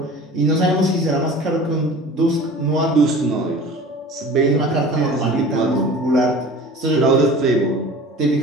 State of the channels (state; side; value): normal; both; correlation 0.41